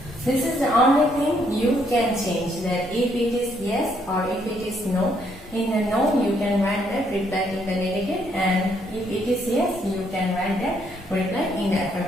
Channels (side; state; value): both; normal; correlation 0.71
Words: This is the only thing you can change, that if it is yes or if it is no. In the no, you can write that reply in the negative, and if it is yes, you can write that reply in the